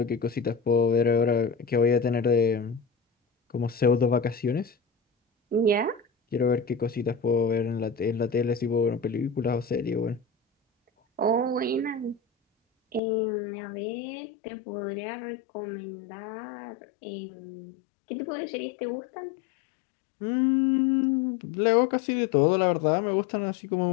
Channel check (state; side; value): drops out; right; at 13.0 s